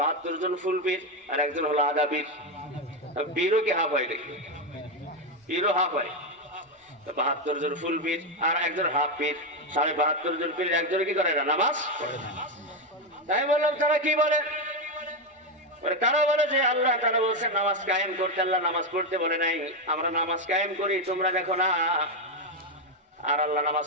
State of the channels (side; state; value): both; normal; correlation 0.08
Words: জন ফুল পীর আর একজন হলো আধা পীর। পীরও কি হাফ হয় নাকি? পীরও হাফ হয়। ৭২ জন ফুল পীর আর একজন হাফ পীর, ৭২ জন পীর একজনে কি করে না? নামাজ পড়ে না। তাই বললাম তারা কি বলে? তারা বলে যে আল্লাহ তাআলা বলছেন নামাজ কায়েম করতে, আল্লাহ নামাজ পড়তে বলে নাই। আমরা নামাজ কায়েম করি, তোমরা দেখো না। আর আল্লাহ নামাজ